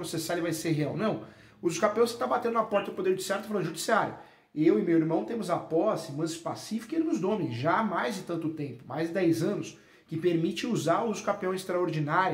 e vai ser real, não. O uso capião você está batendo na porta do Poder Judiciário e falando, judiciário, eu e meu irmão temos a posse, manso pacífica e ele nos domine, já há mais de tanto tempo, mais de 10 anos, que permite usar o uso capião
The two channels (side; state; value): both; identical; correlation 1.00